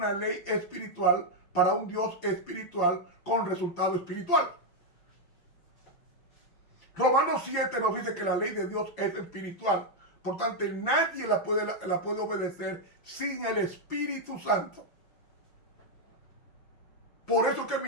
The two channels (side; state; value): right; late; 5.8 ms